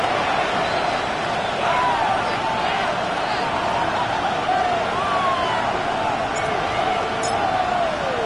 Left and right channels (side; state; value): both; identical; correlation 1.00